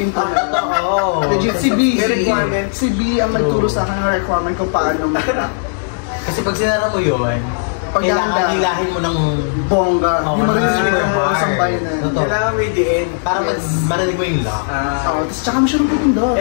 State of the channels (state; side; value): silent; right; 69 dB below the other